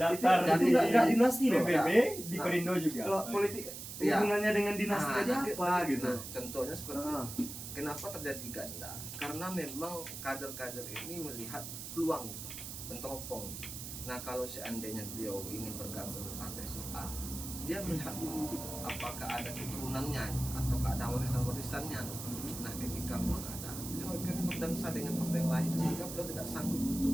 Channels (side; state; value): right; noise; hiss, 9 dB below the sound